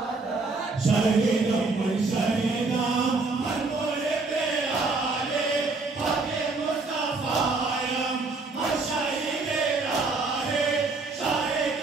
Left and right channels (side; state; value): left; quieter; 3.7 dB